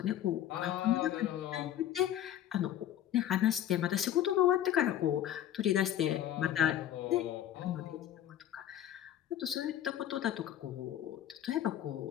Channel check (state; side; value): quieter; right; 11.4 dB